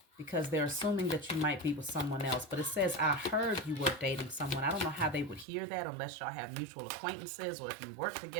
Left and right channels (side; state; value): left; drops out; at 5.5 s